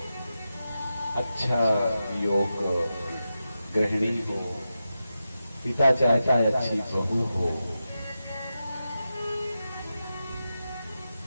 अच्छा योग गृहिणी हो, पिता चाहता है अच्छी बहू हो,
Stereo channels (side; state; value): both; inverted; correlation -0.91